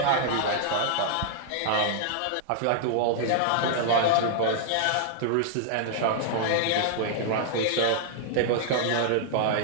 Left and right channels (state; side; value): different; both; correlation -0.01